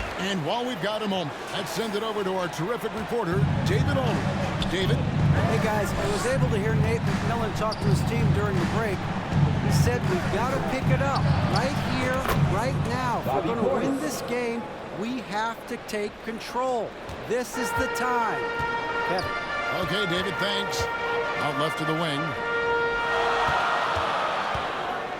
And while we've got a moment, let's send it over to our terrific reporter, David Olney. David? Hey guys, I was able to hear Nate McMillan talk to his team during the break. He said we've got to pick it up right here, right now. If we're going to win this game, we have to take control. This is the time. Kevin. Okay, David, thanks. Out left to the wing.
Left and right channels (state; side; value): identical; both; correlation 1.00